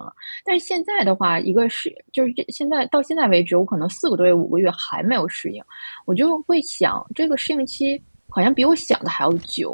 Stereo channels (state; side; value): inverted; both; correlation -1.00